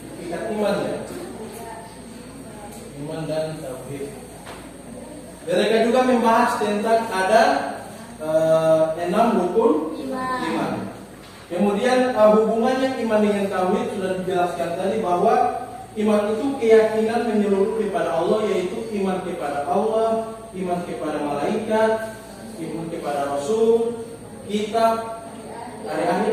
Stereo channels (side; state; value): both; identical; correlation 1.00